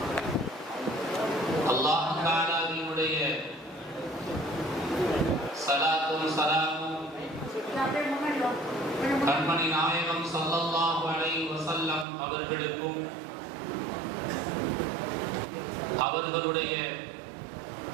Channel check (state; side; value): drops out; left; at 12.1 s